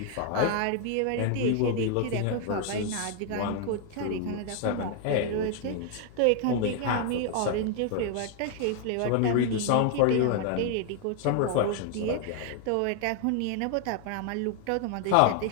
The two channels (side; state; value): both; different; correlation 0.00